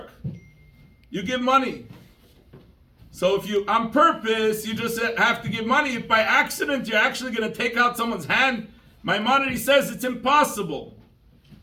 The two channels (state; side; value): identical; both; correlation 1.00